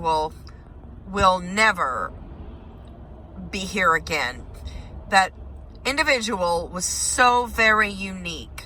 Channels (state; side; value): identical; both; correlation 1.00